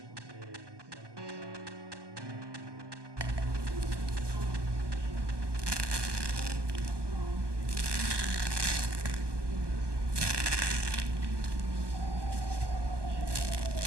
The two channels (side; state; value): left; late; 1.2 ms